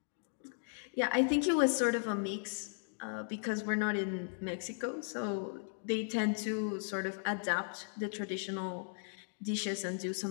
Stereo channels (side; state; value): right; silent; digital silence